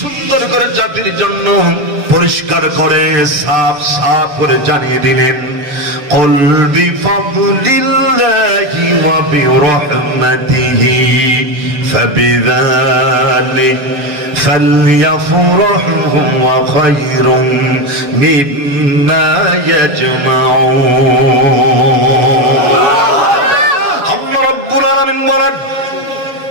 করে জাতির জন্য পরিষ্কার করে সাফ সাফ করে জানিয়ে দিলেন, কুল বিফাদলিল্লাহি ওয়া বিরহমাতিহি ফাবিযালিকা ফালইফরাহু ওয়া খায়রুম মিম্মা ইয়াজমাউন। আল্লাহ রাব্বুল আলামিন বলেন,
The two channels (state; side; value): late; left; 7.1 ms